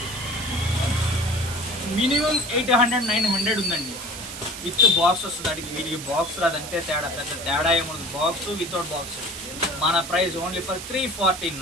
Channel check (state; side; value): noise; right; hiss, 10 dB below the sound